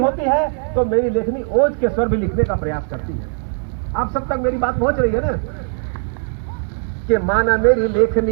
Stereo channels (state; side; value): silent; left; 66 dB below the other